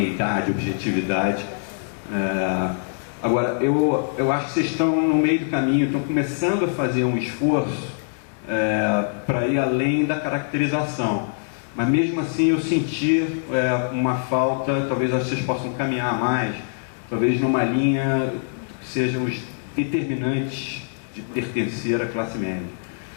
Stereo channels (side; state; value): right; silent; digital silence